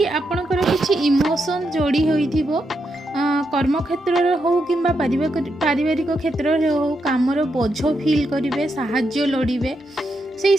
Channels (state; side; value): normal; both; correlation 0.83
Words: आपणकर किछि इमोशन जोड़ी होइथिबो। कर्म क्षेत्र रे हो किंबा पारिवारिक क्षेत्र रे हो कामर बोझ फील करिवे, साहाय्य लोडिबे। से